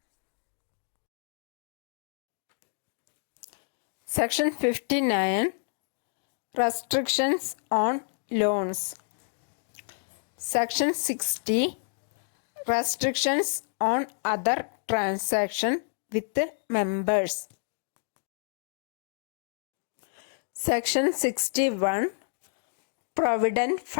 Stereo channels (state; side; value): silent; right; digital silence